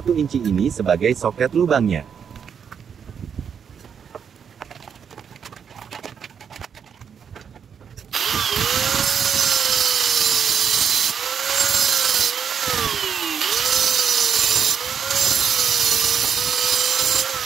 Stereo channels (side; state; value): left; quieter; 7.3 dB